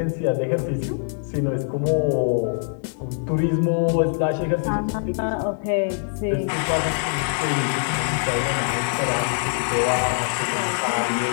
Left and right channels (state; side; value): silent; right; digital silence